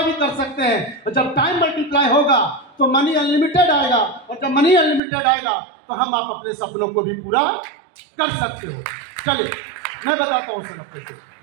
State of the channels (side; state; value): left; drops out; at 5.0 s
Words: भी कर सकते हैं। और जब टाइम मल्टीप्लाई होगा तो मनी अनलिमिटेड आएगा और जब मनी अनलिमिटेड आएगा तो हम आप अपने सपनों को भी पूरा कर सकते हो। चलिए मैं बताता हूं सर आपको।